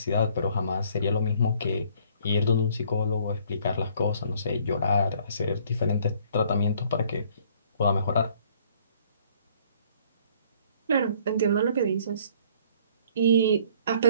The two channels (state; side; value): inverted; both; correlation -0.60